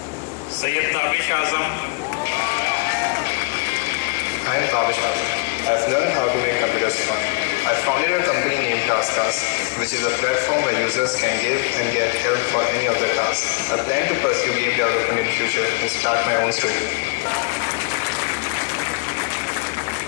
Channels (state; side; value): quieter; right; 31.7 dB